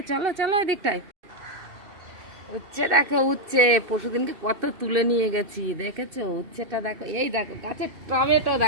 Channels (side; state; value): left; late; 2.6 ms